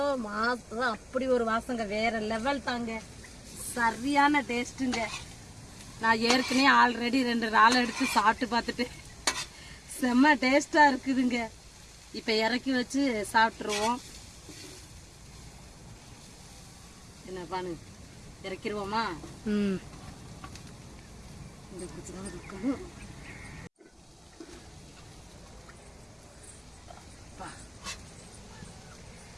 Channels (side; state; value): both; identical; correlation 1.00